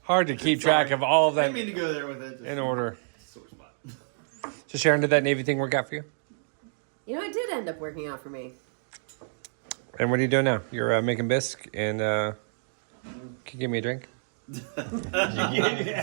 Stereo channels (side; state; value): left; silent; digital silence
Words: Hard to keep track of all of I that didn't mean to go there with it. in order. Sore spot. So Sharon, did that Navy thing work out for you? You know, it did end up working out for me. And what are you doing now? You're making bisque and can you give me a drink?